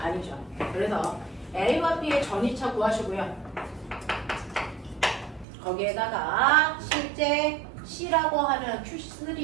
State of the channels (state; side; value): drops out; left; at 5.5 s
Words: 그래서 A와 B의 전이차 구하시고요. 거기에다가 실제 C라고 하는